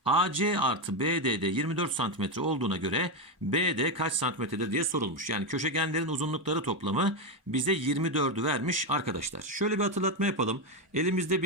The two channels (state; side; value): normal; both; correlation 0.09